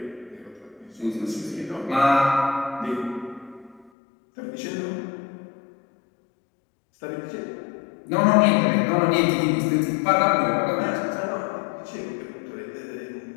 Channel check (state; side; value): drops out; right; at 3.9 s